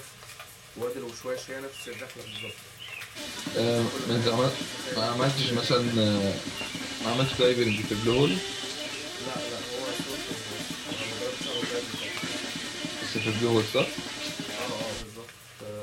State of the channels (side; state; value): both; identical; correlation 1.00